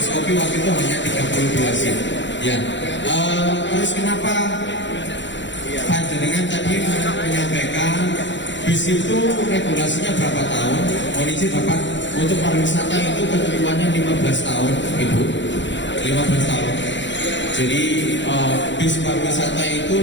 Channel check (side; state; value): right; late; 0.53 ms